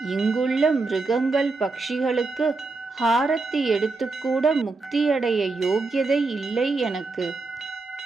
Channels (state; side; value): quieter; left; 3.7 dB